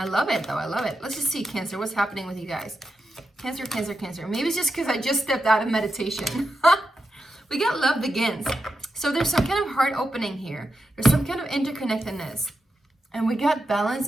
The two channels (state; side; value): normal; both; correlation 0.87